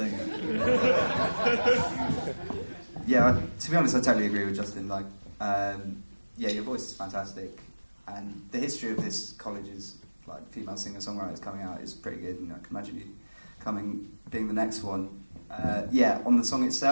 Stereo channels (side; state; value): both; inverted; correlation -1.00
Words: you go. Yeah, to be honest, I totally agree with Justin. Like, your voice is fantastic, and the history of this college's female singer-songwriters coming out is pretty good. And I can imagine you being the next one. On the song